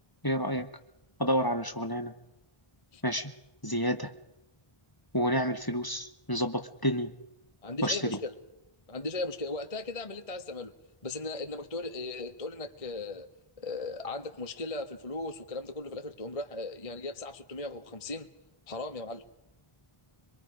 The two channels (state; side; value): late; right; 1.0 ms